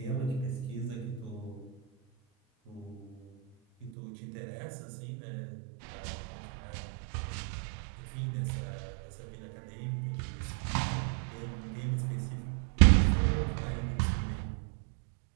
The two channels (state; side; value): drops out; left; at 3.9 s